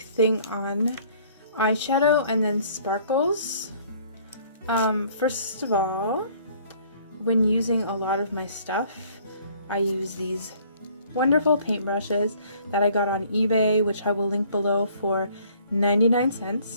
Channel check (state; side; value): inverted; both; correlation -0.57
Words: on eyeshadow and then sparkles. First of all, when using a lot of my stuff, I use these wonderful paintbrushes that I got on eBay, which I will link below, for 99